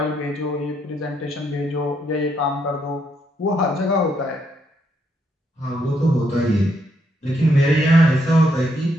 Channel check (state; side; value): normal; both; correlation 0.75